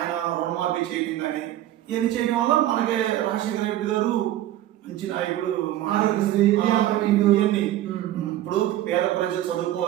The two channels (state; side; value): quieter; left; 13.5 dB